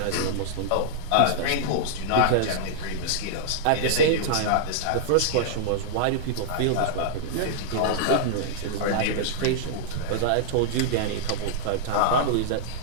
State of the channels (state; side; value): different; both; correlation -0.01